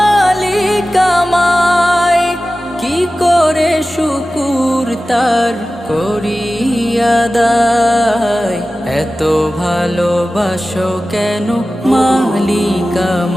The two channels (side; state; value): both; normal; correlation 0.95